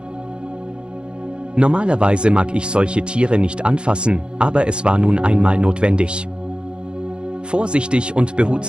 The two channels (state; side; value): late; left; 0.053 ms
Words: Normalerweise mag ich solche Tiere nicht anfassen, aber es war nun einmal notwendig. Vorsichtig und